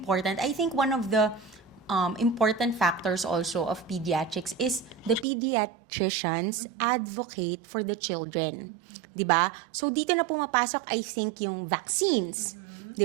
I think one of the important factors also of pediatrics is the pediatricians advocate for the children. Diba? So, dito na pumapasok, I think, yung vaccines.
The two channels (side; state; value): left; drops out; at 5.2 s